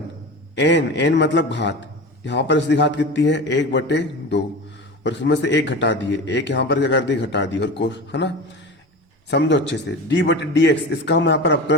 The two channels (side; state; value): both; normal; correlation 0.30